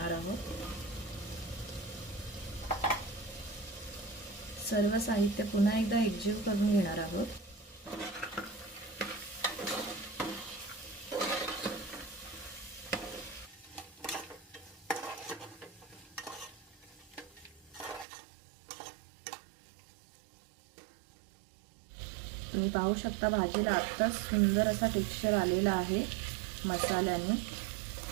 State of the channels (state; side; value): drops out; left; at 18.1 s